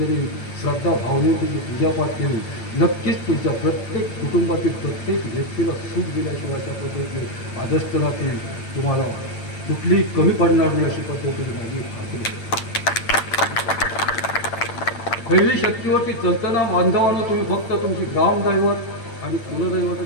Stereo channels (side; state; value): right; late; 8.8 ms